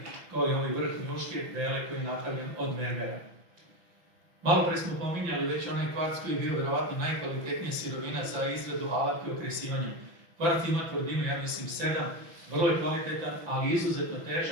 kao i ovaj vrh njuške bele koji je napravljen od mermera. Malo pre smo pominjali već onaj kvarc koji je bio verovatno najkvalitetnija sirovina za izradu alatke okresivanjem. Kvarc ima tvrdinu, ja mislim 7, vrlo je kvalitetan, ali izuzetno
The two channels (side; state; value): left; late; 6.1 ms